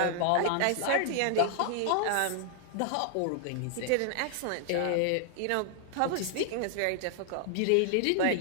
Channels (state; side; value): different; both; correlation 0.00